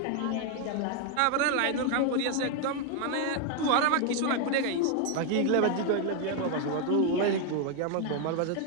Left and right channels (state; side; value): different; both; correlation 0.01